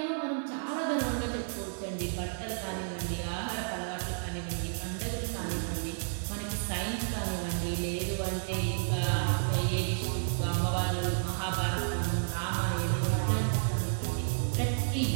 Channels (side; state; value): left; silent; digital silence